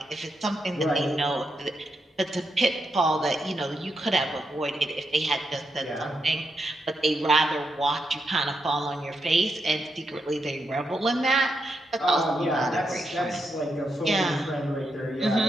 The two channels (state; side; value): normal; both; correlation 0.83